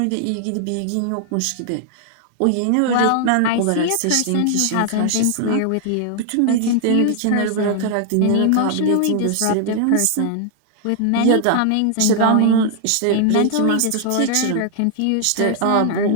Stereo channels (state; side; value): different; both; correlation -0.01